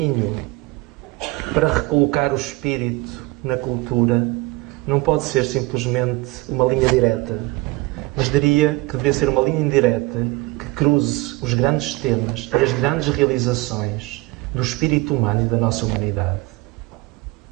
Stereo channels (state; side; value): quieter; left; 22.5 dB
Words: para recolocar o espírito na cultura não pode ser simplesmente uma linha direta, mas diria que deveria ser uma linha indireta que cruze os grandes temas e as grandes realizações do espírito humano e da nossa humanidade.